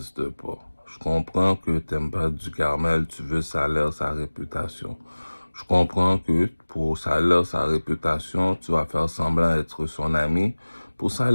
pas. Je comprends que t'aimes pas du Carmel, tu veux salaire, sa réputation. Je comprends que pour salaire, sa réputation, tu vas faire semblant d'être son ami. Pour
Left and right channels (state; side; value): inverted; both; correlation -1.00